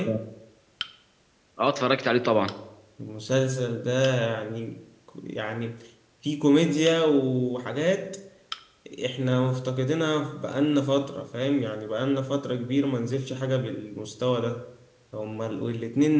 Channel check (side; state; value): both; identical; correlation 1.00